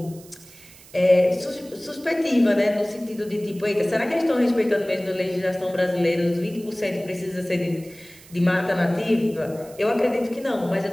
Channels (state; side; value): noise; right; hiss, 22 dB below the sound